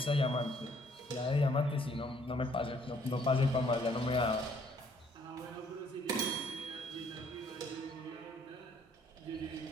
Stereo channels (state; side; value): normal; both; correlation 0.63